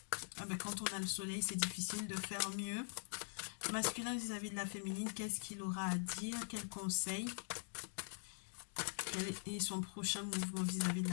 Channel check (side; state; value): right; silent; digital silence